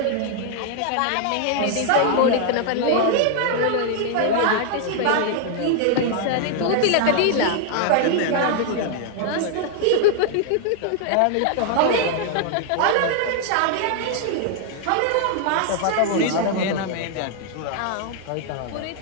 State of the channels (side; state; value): both; different; correlation 0.00